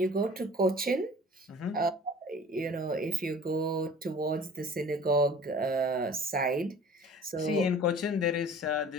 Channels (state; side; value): normal; both; correlation 0.45